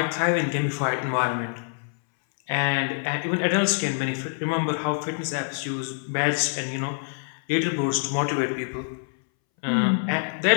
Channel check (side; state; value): right; silent; 61 dB below the other